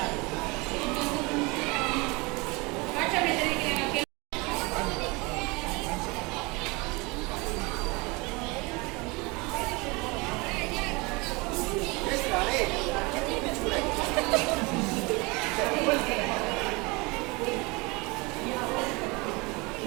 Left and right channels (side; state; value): left; quieter; 26.1 dB